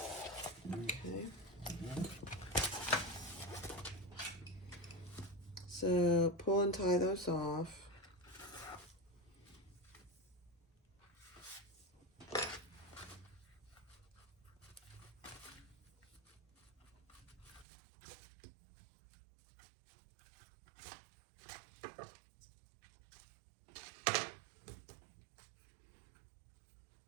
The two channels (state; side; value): drops out; left; at 17.7 s